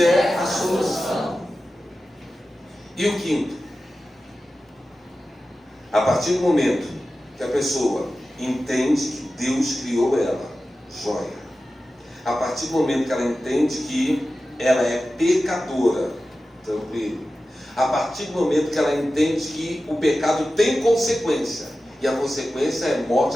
a solução. E o quinto? A partir do momento que a pessoa entende que Deus criou ela, joia. A partir do momento que ela entende que ela é pecadora, tranquilo. A partir do momento que ela entende que o pecado tem consequência, e a consequência é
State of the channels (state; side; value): normal; both; correlation 0.94